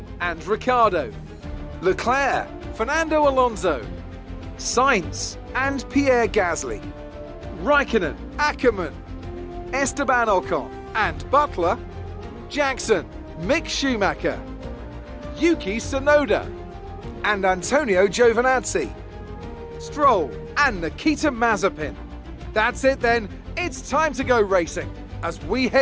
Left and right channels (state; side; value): identical; both; correlation 1.00